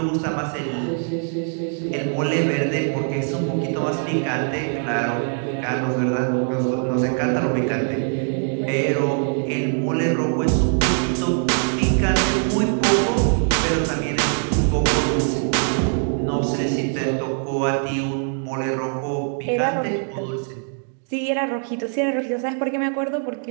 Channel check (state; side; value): silent; left; 55 dB below the other